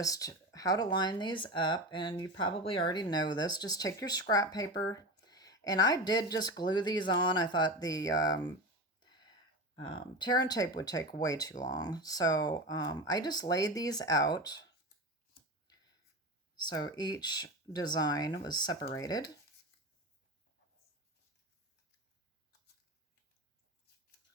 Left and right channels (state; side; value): normal; both; correlation 0.25